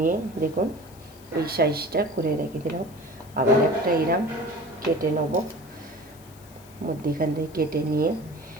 দেখুন এই সাইজটা করে রেখে দিলাম। আবার একটা এরম কেটে নেব। মধ্যেখান থেকে কেটে নিয়ে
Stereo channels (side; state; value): left; noise; hiss, 24 dB below the sound